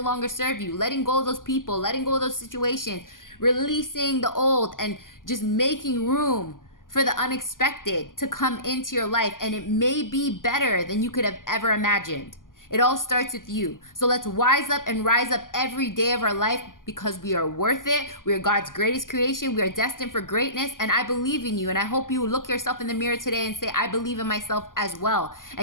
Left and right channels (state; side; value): late; right; 0.89 ms